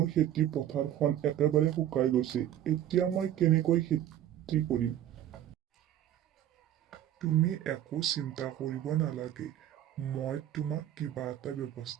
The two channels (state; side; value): quieter; left; 11.6 dB